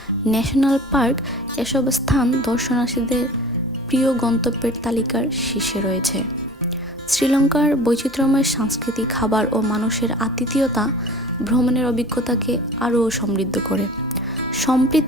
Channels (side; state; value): both; normal; correlation 0.42